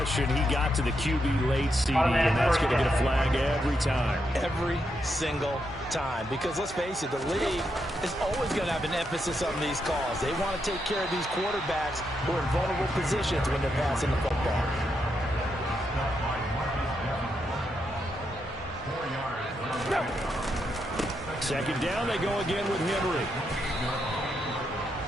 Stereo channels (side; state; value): both; normal; correlation 0.82